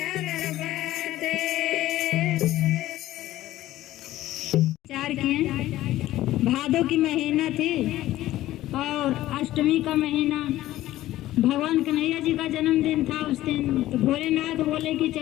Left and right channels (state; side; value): quieter; right; 15.0 dB